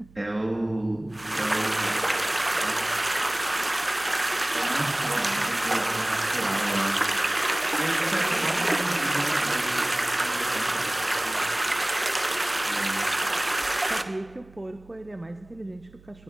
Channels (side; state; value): right; noise; hum, 25 dB below the sound